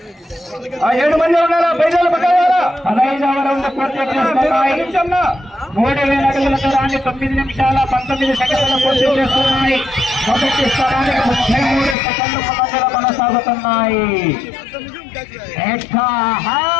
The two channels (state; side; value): drops out; right; at 12.0 s